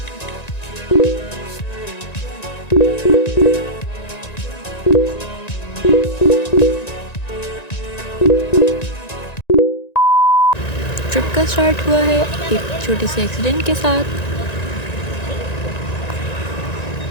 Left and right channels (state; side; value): late; right; 1.9 ms